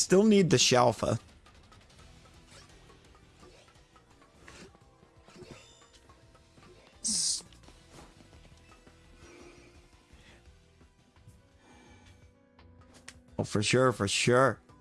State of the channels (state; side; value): identical; both; correlation 1.00